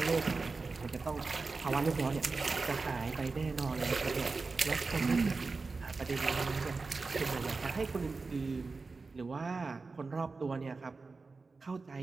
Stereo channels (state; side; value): quieter; left; 4.1 dB